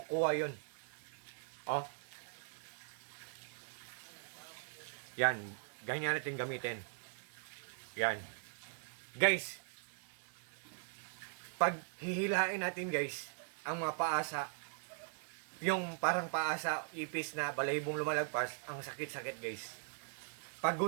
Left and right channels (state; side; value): silent; left; digital silence